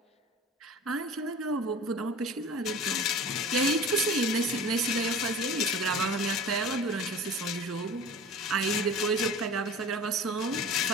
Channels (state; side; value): normal; both; correlation 0.39